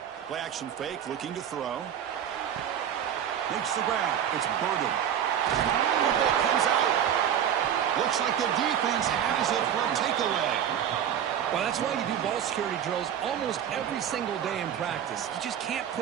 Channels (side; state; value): left; quieter; 9.5 dB